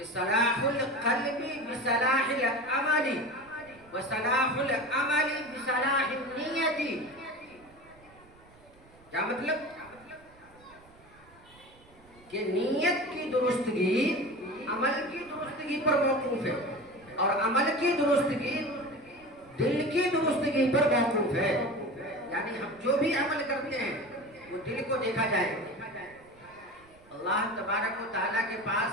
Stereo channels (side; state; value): right; noise; rumble, 27 dB below the sound